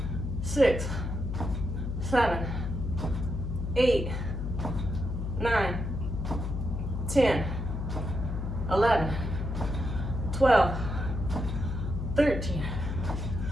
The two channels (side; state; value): left; noise; hum, 3 dB below the sound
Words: 6, 7, 8, 9, 10, 11, 12, 13,